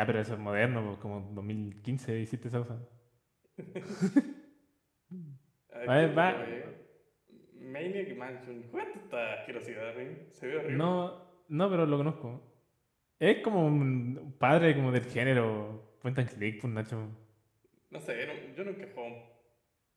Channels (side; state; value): both; identical; correlation 1.00